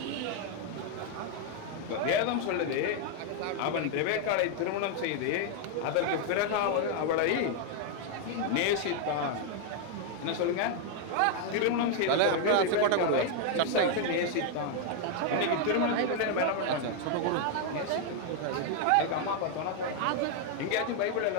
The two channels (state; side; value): different; both; correlation 0.00